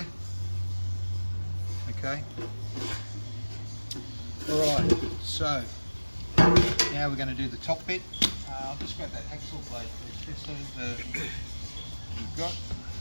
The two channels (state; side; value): inverted; both; correlation -1.00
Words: Okay. Alright, so now we're going to do the top bit. I'll just grab that hacksaw blade first, so we've got.